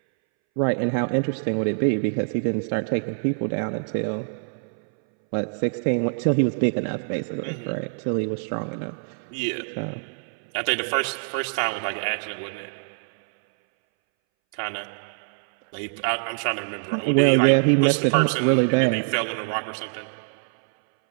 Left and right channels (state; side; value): silent; left; 62 dB below the other